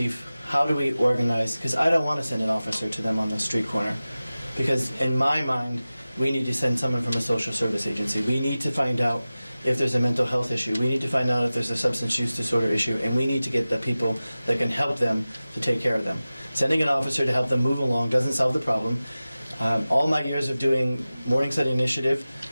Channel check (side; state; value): both; inverted; correlation -0.96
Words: how do we organize? Because I don't want to send an officer to them on the street corner. Because in my mind, we need to send someone from a social service agency. We need to find out if there's a mental health issue. We need to find out if there's a substance use disorder issue, and we need to get the people that can help them to take care of them. Sending an officer to help them move along doesn't solve the problem. All my years of doing Morningside Initiative,